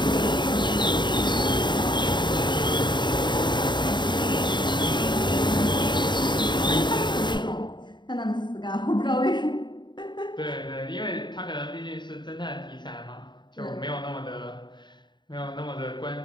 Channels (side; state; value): right; late; 0.22 ms